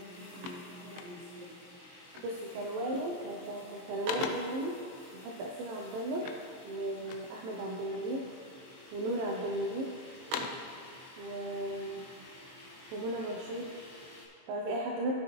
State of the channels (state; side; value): late; left; 22 ms